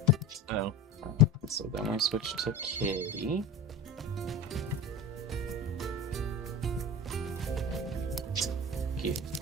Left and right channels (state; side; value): normal; both; correlation 0.31